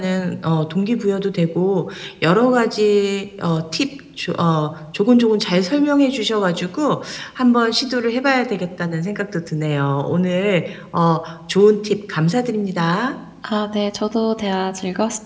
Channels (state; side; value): identical; both; correlation 1.00